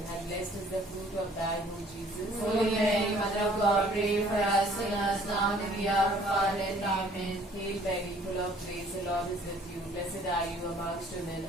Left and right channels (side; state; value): both; normal; correlation 0.57